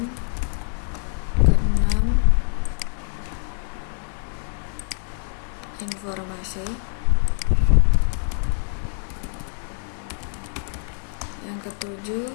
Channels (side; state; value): right; silent; 62 dB below the other